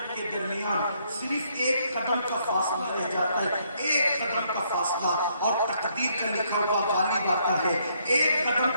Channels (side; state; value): both; inverted; correlation -0.71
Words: کے درمیان صرف ایک قدم کا فاصلہ رہ جاتا ہے، ایک قدم کا فاصلہ، اور تقدیر کا لکھا ہوا غالب آتا ہے۔ ایک قدم